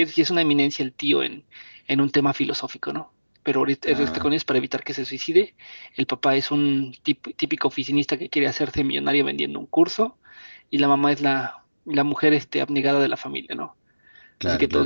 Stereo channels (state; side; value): inverted; both; correlation -1.00